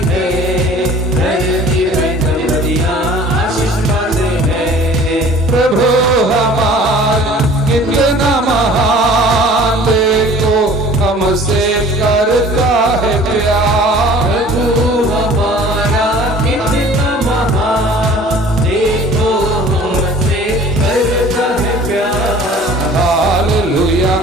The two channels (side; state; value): both; normal; correlation 0.48